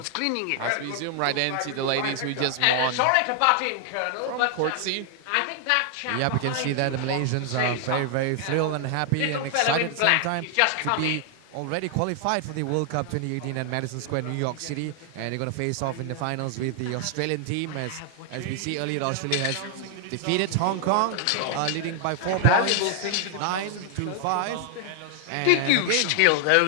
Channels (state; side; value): different; both; correlation 0.00